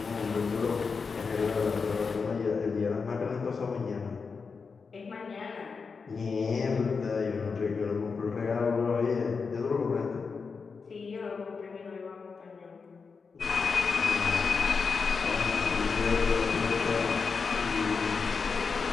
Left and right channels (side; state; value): right; quieter; 5.1 dB